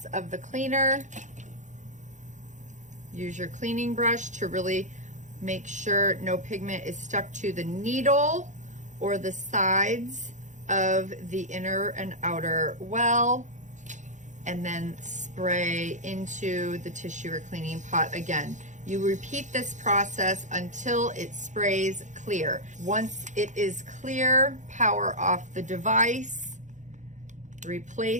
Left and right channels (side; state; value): left; late; 0.35 ms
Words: of the cleaner. Use your cleaning brush to really make sure no pigment is stuck to the needle or the sides of the inner and outer well, and then spray into the tissue or cleaning pot again. You repeat this process until it sprays clear. Once it is clear, power off the device,